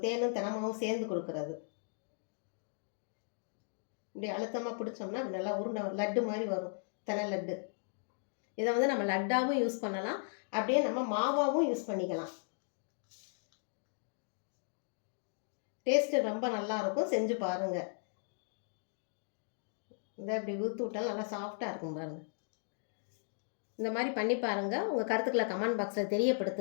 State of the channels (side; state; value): right; silent; digital silence